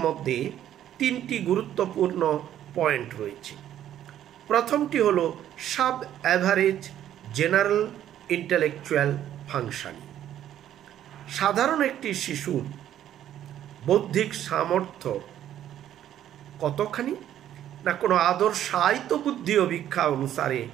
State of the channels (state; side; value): quieter; left; 11.3 dB